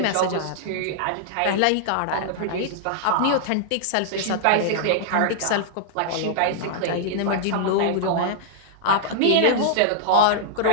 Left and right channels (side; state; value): both; different; correlation -0.01